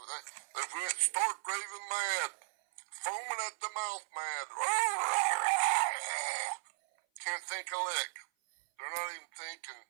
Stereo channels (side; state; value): left; silent; 54 dB below the other